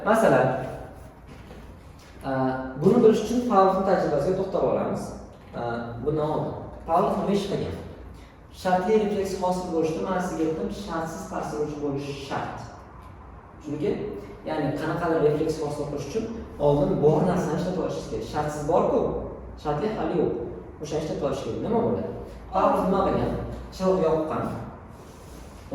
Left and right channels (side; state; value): both; identical; correlation 1.00